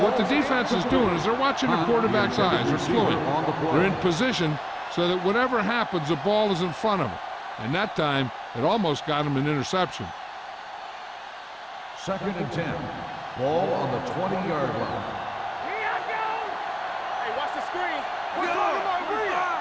What the defense is doing is they're watching the quarterback's eyes. They're fluid. They're in position so that whatever happens, the ball is in front of them. And that time, it almost got him an interception. Second and 10. Ball on the 20-yard line. Here I go. Hey, watch the screen.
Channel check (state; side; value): identical; both; correlation 1.00